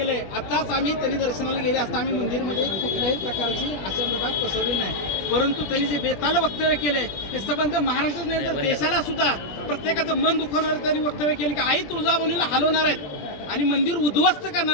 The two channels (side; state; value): right; late; 20 ms